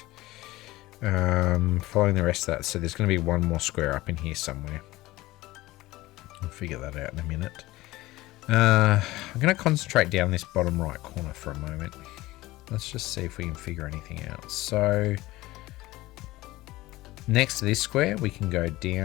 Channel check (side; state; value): right; quieter; 18.3 dB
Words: Following the rest of that, so there's going to be 1 more square up in here somewhere. I'll figure that out in a minute. I'm going to concentrate down this bottom right corner for a moment. Let's just see if we can figure anything out. So next to this square, we can go